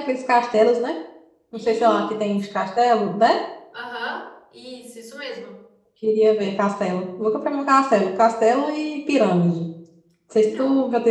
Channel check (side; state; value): both; identical; correlation 1.00